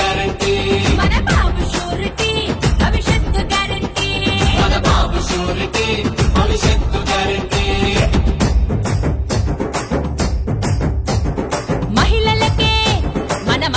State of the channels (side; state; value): both; identical; correlation 1.00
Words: మన బాబు షూరిటీ భవిష్యత్తు గ్యారంటీ మన బాబు షూరిటీ భవిష్యత్తు గ్యారంటీ మహిళలకే మన